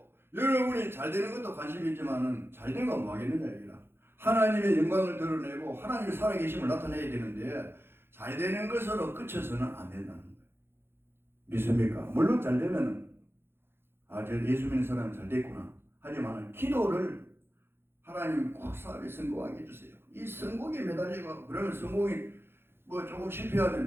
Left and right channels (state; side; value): late; left; 0.11 ms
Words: 여러분이 잘 되는 것도 관심이 있지만은 잘 된 건 뭐 하겠느냐 이기라. 하나님의 영광을 드러내고 하나님의 살아계심을 나타내야 되는데 잘 되는 것으로 그쳐서는 안 된다는 거예요. 믿습니까? 물론 잘 되면 저 예수 믿는 사람은 잘 됐구나. 하지만 기도를 하나님 꼭 사업에 성공하게 해주세요. 이 성공에 매달리고 그러면 성공이 뭐 조금